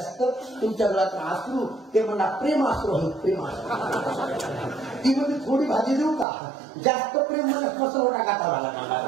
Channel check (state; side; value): drops out; left; at 6.2 s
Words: तुमच्या वेळात आसरू ते म्हणा प्रेम आसरू आहे प्रेम आसरू. ती म्हणजे थोडी भाजी देऊ का जास्त प्रेम म्हणत मसरवटा गाठा